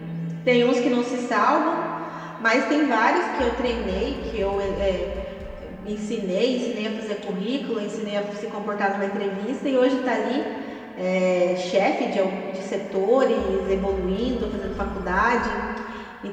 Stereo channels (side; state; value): both; identical; correlation 1.00